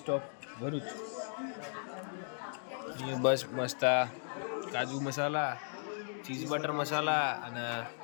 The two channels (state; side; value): silent; right; digital silence